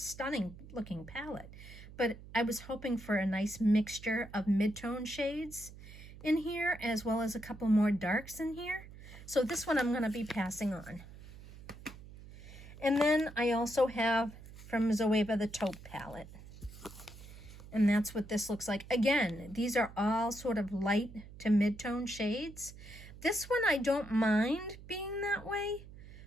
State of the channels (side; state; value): right; noise; hum, 16 dB below the sound